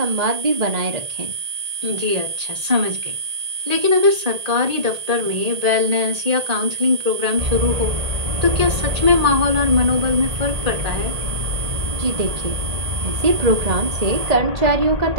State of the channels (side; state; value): left; late; 1.8 ms